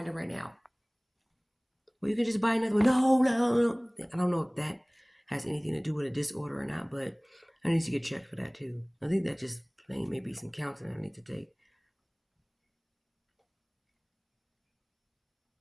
it right now. Well, you can just buy another one. No, no, no. I don't know if that has anything to do with a disorder or not, but I need to get checked for that too. I think that just plain maybe some counseling I need to take.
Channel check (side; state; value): both; identical; correlation 1.00